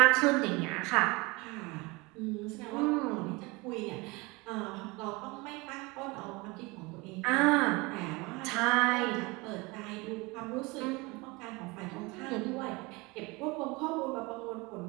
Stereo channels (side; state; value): left; quieter; 25.1 dB